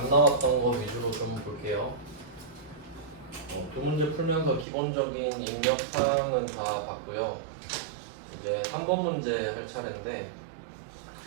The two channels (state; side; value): drops out; left; at 4.7 s